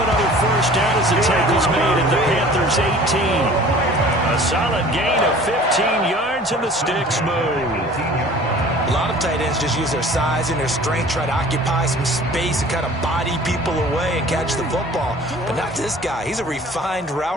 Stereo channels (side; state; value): both; normal; correlation 0.47